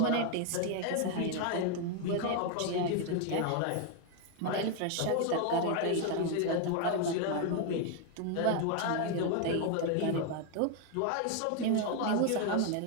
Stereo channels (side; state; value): both; different; correlation 0.01